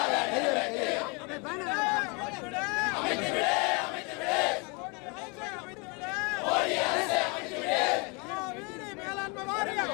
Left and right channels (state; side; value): quieter; right; 31.1 dB